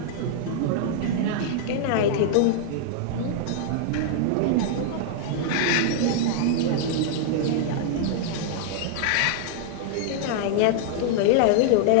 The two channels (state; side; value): different; both; correlation -0.01